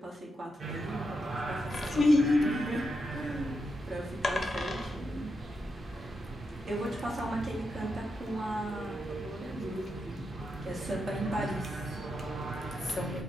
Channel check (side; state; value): both; normal; correlation 0.85